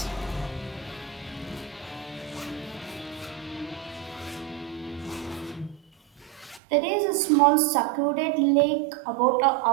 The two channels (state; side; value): drops out; left; at 6.6 s